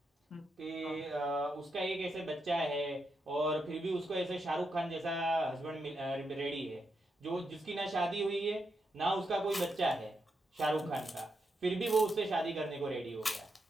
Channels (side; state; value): both; normal; correlation 0.83